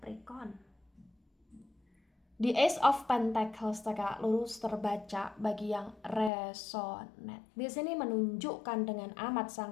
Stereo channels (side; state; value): right; drops out; at 6.3 s